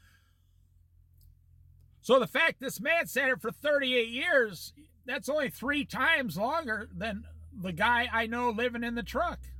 So the fact this man sat here for 38 years, that's only 3 times longer than the guy I know living in the truck.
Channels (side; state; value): both; identical; correlation 1.00